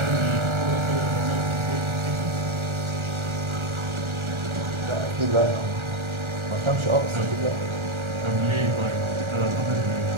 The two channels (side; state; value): left; late; 1.4 ms